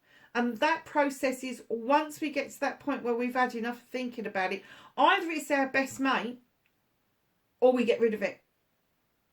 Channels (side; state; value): both; identical; correlation 1.00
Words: And that process is, once we get to that point where we've had enough thinking about it, either it's our best mate or we get rid of it.